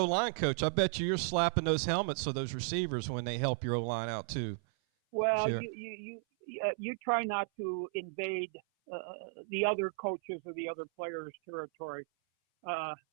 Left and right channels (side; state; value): left; silent; 55 dB below the other